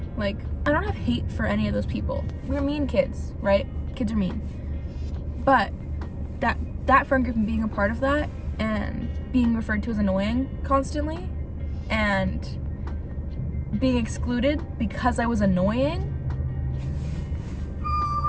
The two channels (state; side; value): identical; both; correlation 1.00